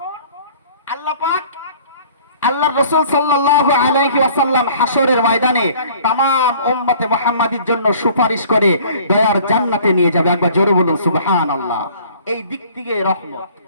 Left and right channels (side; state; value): both; inverted; correlation -0.52